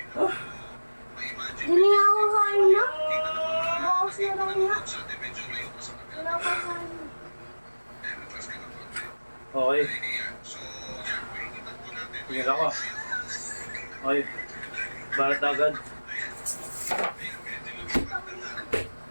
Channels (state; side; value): inverted; both; correlation -1.00